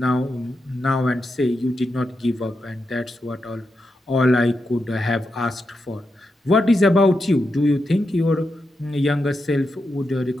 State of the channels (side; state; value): both; normal; correlation 0.87